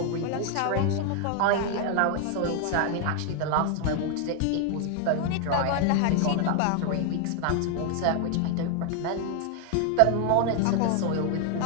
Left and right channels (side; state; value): both; different; correlation 0.00